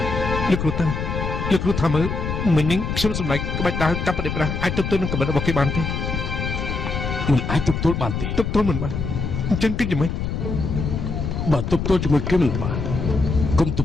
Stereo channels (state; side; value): noise; left; rumble, 3 dB below the sound